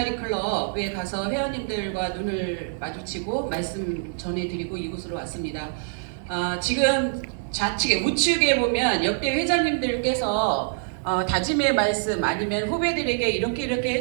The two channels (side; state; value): left; silent; digital silence